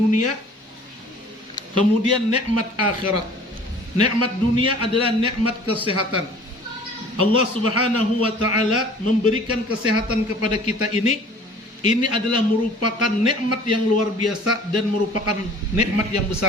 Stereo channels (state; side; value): normal; both; correlation 0.49